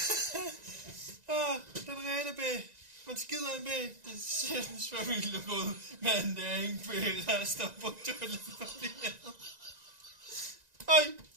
Den rene B. Man skider en B. Det ser den svømmeligt ud. Men det er ikke B-rester på toiletpapiret. Øj,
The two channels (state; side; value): late; left; 1.9 ms